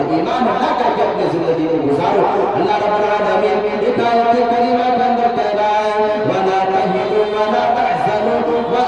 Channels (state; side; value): identical; both; correlation 1.00